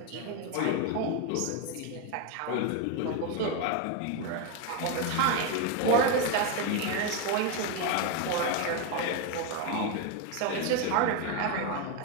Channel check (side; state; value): both; different; correlation 0.02